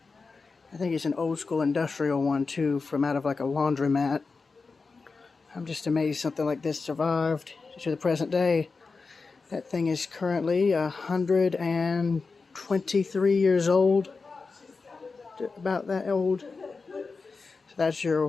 think it's an old school industrial one too, from out of like a laundromat. I'm just amazed something like this survived to the present day. That thing is currently 123 years old. About that old. So that's your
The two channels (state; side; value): quieter; right; 4.3 dB